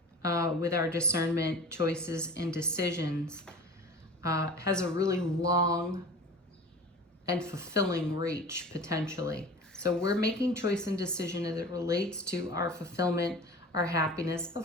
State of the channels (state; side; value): normal; both; correlation 0.37